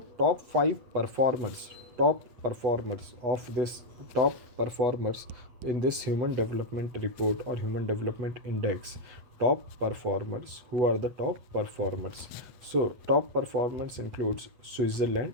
top performers in this human development report or human development index, top performers. Who are the top performers? So top performers includes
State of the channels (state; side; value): late; left; 8.3 ms